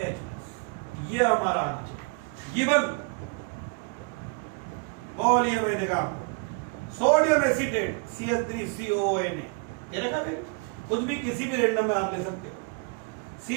ये हमारा आना चाहिए गिवन। बोलिए, मैं देखा सोडियम एसिटेट CH3CONA, ये रखा भी, कुछ भी किसी भी रेंडम में आप ले सकते हो,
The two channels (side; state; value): left; quieter; 33.3 dB